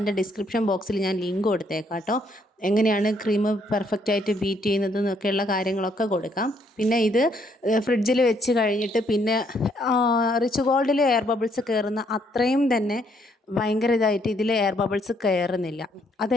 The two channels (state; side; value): normal; both; correlation 0.70